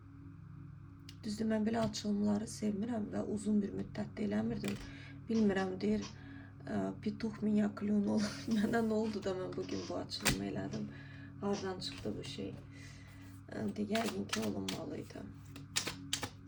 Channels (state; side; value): identical; both; correlation 1.00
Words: Düzdür, mən belə açılımları sevmirəm və uzun bir müddətdə eləmirdim. Bilmirəm, deyir, pituh minya klyon olur. Mənə nə oldu da mən bugün bu açılımı elədim. Hardan çıxdı bu şey? Yəqin ki, olunmalıydı.